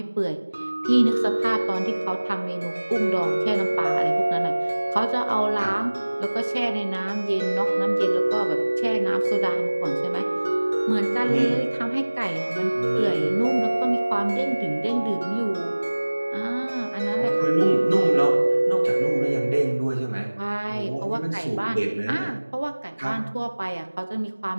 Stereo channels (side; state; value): both; inverted; correlation -1.00